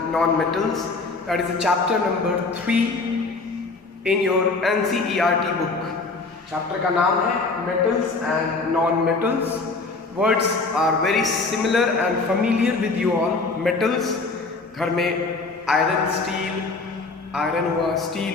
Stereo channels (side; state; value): right; quieter; 3.8 dB